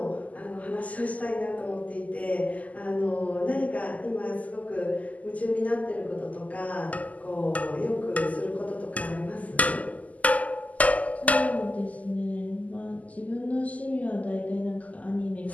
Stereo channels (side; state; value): right; late; 0.074 ms